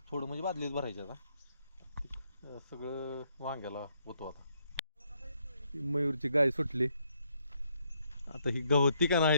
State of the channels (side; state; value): both; inverted; correlation -0.73